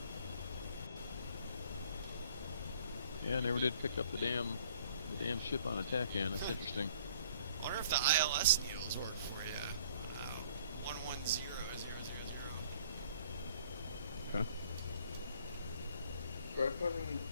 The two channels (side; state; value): both; inverted; correlation -0.57